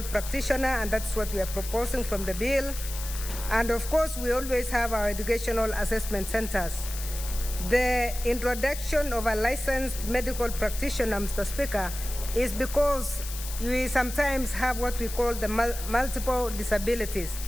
practitioner, and that's what we are proposing from the bill. And of course, we always have our educational assessment centers. The introduction of a licensed medical practitioner, Mr. Speaker, is because we sometimes have what we call the multiple disabilities.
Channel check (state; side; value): noise; left; hiss, 10 dB below the sound